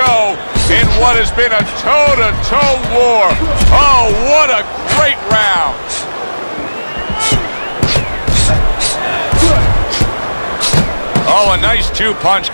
in what has been a toe-to-toe war. Oh, what a great round. Oh, a nice two-punch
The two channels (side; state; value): both; inverted; correlation -1.00